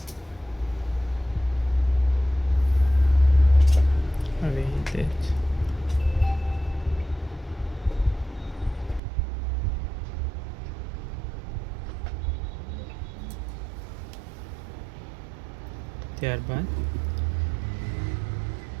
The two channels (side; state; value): left; drops out; at 9.0 s